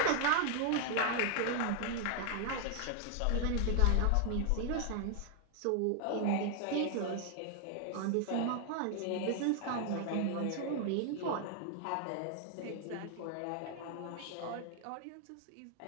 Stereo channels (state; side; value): different; both; correlation 0.00